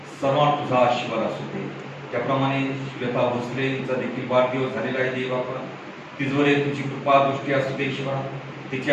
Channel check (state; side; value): identical; both; correlation 1.00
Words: सर्वांना तुझा आशीर्वाद असू दे. त्याप्रमाणे श्वेता भोसलेचा देखील वाढदिवस झालेला आहे देव बापा, तिजवरे तुझी कृपा दृष्टी असू दे ईश्वरा.